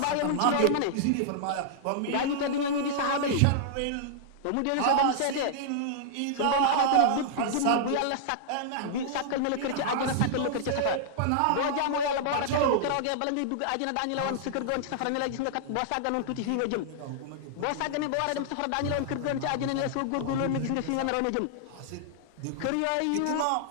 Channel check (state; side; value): different; both; correlation -0.01